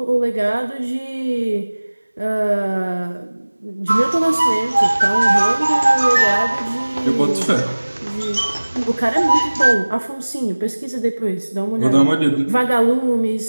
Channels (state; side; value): inverted; both; correlation -1.00